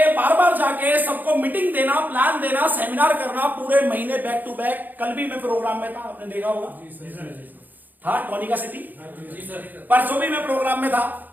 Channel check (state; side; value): late; left; 0.085 ms